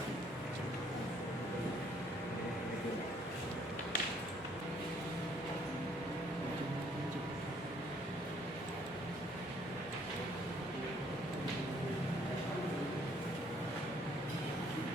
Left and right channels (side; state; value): both; normal; correlation 0.64